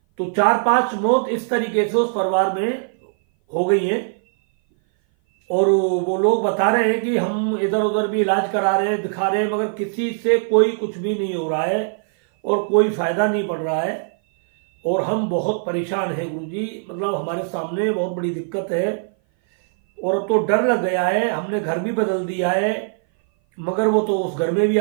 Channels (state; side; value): silent; left; 58 dB below the other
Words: तो 4-5 मौत इस तरीके से उस परिवार में हो गई है। और वो लोग बता रहे हैं कि हम इधर उधर भी इलाज करा रहे हैं, दिखा रहे हैं, मगर किसी से कोई कुछ भी नहीं हो रहा है और कोई फायदा नहीं पड़ रहा है। और हम बहुत परेशान हैं गुरुजी, मतलब हमारे सामने बहुत बड़ी दिक्कत है और अब तो डर लग गया है। हमने घर भी बदल दिया है, मगर वो तो उस घर में भी